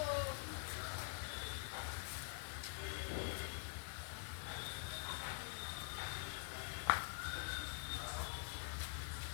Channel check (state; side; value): silent; right; digital silence